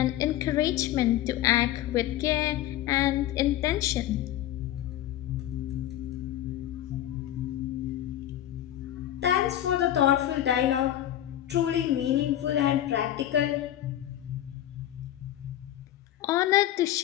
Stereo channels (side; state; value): right; quieter; 12.7 dB